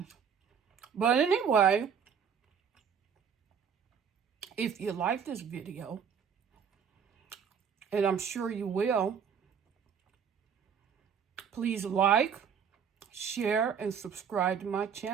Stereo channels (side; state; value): left; quieter; 7.2 dB